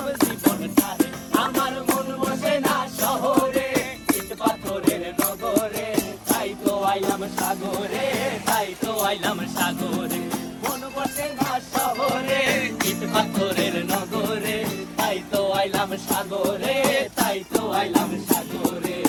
জীবন ধারে। আমার মন বসে না শহরে, ইট পাথরের নগরে, তাই তো আইলাম সাগরে, তাই তো আইলাম সাগরে। মন বসে না শহরে, ইট পাথরের নগরে, তাই তো আইলাম সাগরে, তাই তো আইলাম সাগরে।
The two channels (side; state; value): both; identical; correlation 1.00